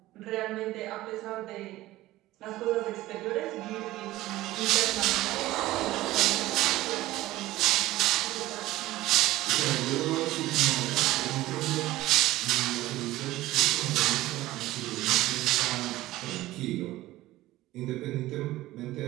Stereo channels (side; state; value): left; quieter; 16.7 dB